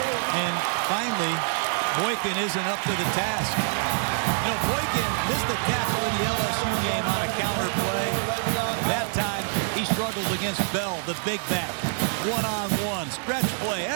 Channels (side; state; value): left; silent; digital silence